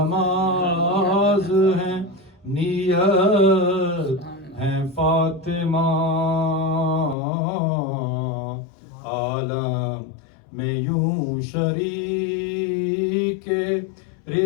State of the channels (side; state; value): right; drops out; at 7.2 s